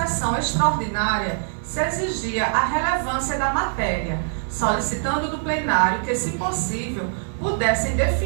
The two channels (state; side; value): silent; left; digital silence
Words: extraordinária se exigia a relevância da matéria, solicitando do plenário que, se possível, pudessem